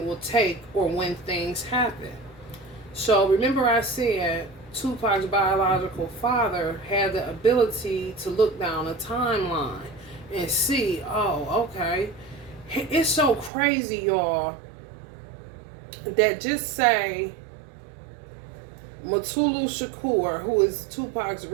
will take or when things happen. So remember I said Tupac's biological father had the ability to look down a timeline and see, oh, okay. It's so crazy, y'all, that just say Mutulu Shakur, who is Tupac's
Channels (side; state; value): left; drops out; at 13.5 s